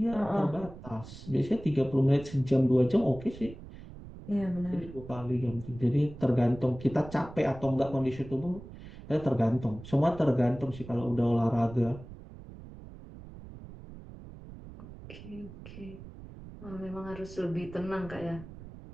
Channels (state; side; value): noise; right; rumble, 15 dB below the sound